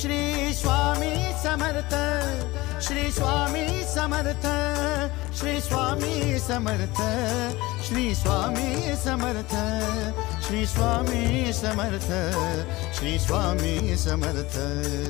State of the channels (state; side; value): quieter; right; 20.3 dB